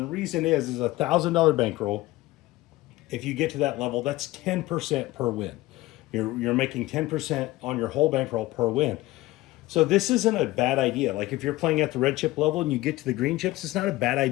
the reason is a $1,000 bankroll. If you get to that level, that's 10% per win. You're making 10% on your whole bankroll per win. So this isn't a bad idea. Like if you're playing at the red chip level and you get to the green chips, it's not a bad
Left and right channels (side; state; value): right; quieter; 18.2 dB